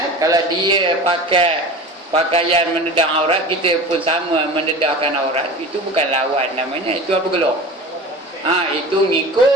Kalau dia pakai pakaian menedang aurat, kita pun sama menedahkan aurat, itu bukan lawan namanya. Itu apa gelap? Itu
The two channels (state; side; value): normal; both; correlation 0.35